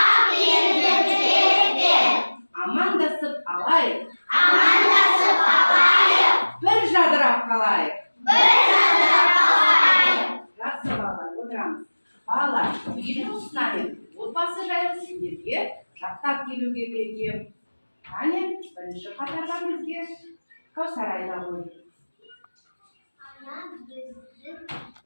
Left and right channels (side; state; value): both; inverted; correlation -1.00